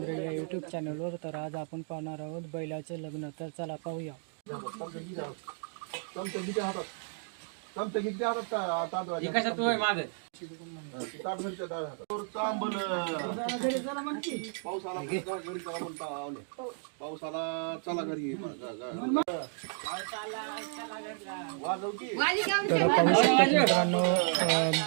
या यूट्यूब चॅनलवर। तर आज आपण पाहणार आहोत बैलाचे लग्न। तर चला पाहूया। पावसाला चला घरी तर पाहू शकता मित्रांनो,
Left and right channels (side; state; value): left; silent; 56 dB below the other